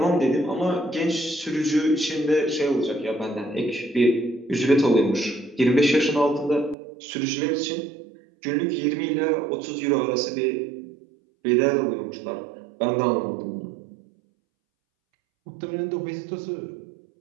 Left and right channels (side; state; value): left; drops out; at 6.8 s